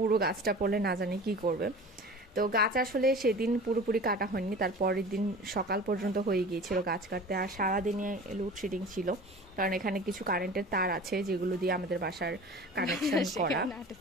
গাছটা পড়লে না জানি কি করবে। তো গাছ আসলে সেদিন পুরোপুরি কাটা হয়নি, তার পরের দিন সকাল পর্যন্ত হয়ে গিয়েছিল গাছ কাটতে। আর সারাদিনে লোডশেডিং ছিল, কারণ এখানে কিছু কারেন্টের তার আছে যেগুলো দিয়ে আমাদের বাসার কানেকশন করা।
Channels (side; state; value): both; normal; correlation 0.39